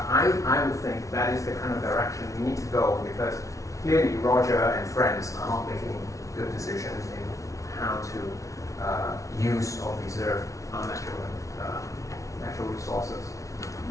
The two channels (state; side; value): late; right; 0.16 ms